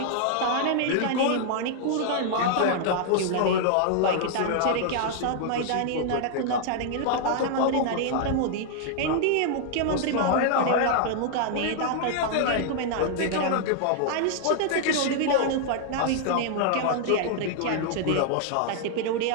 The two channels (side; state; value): both; different; correlation -0.01